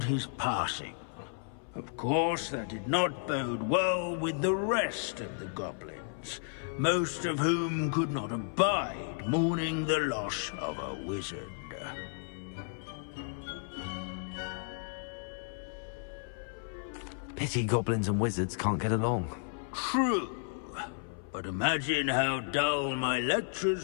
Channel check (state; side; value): silent; right; 56 dB below the other